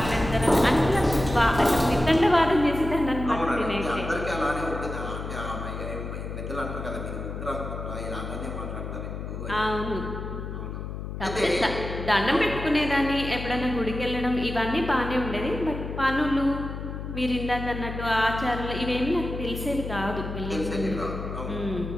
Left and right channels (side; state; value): left; noise; hum, 7 dB below the sound